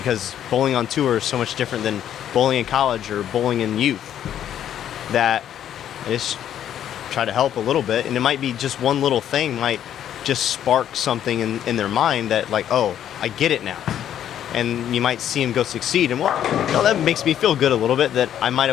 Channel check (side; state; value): right; quieter; 10.4 dB